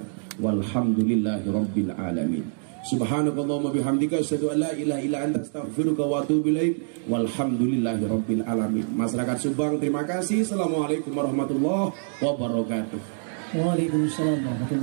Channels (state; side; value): silent; left; digital silence